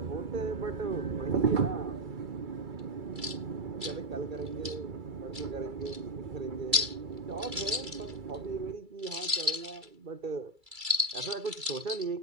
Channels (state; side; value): late; left; 2.3 ms